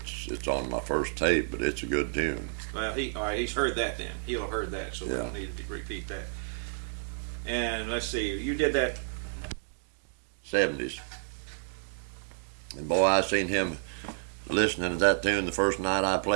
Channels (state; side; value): silent; left; digital silence